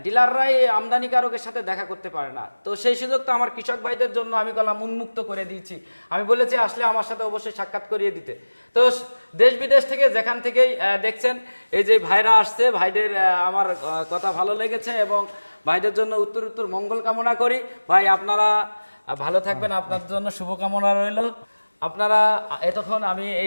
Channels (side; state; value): both; inverted; correlation -1.00